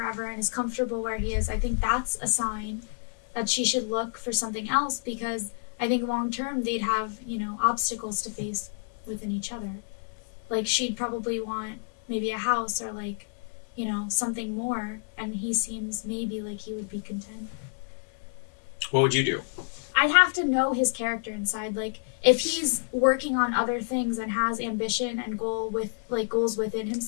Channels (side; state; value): right; silent; digital silence